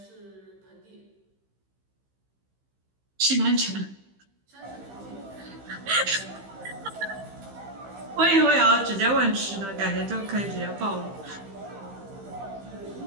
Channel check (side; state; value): left; late; 15 ms